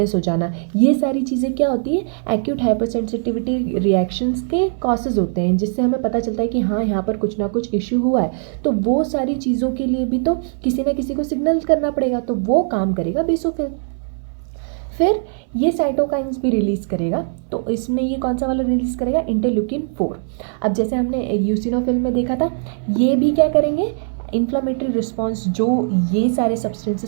हो जाना, ये सारी चीज़ें क्या होती है? एक्यूट हाइपर सेंसिटिविटी रिएक्शंस के कॉसेज होते हैं, जिससे हमें पता चलता है कि हाँ यहाँ पर कुछ ना कुछ इश्यू हुआ है। तो वो सारी चीज़ों के लिए भी तो किसी ना किसी को सिग्नल करना पड़ेगा, तो वो काम करेगा बेसोफिल। फिर ये साइटोकाइंस भी रिलीज़ करेगा, तो इसमें ये कौन सा वाला रिलीज़ करेगा? इंटरल्यूकिन 4। अब जैसे हमने यूसिनोफिल में देखा था, ये भी क्या करेंगे? इन्फ्लामेटरी रिस्पॉन्स जो ये सारे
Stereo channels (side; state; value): left; silent; 62 dB below the other